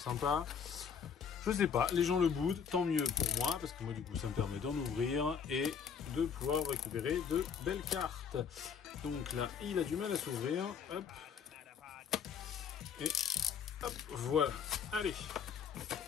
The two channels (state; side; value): quieter; right; 6.9 dB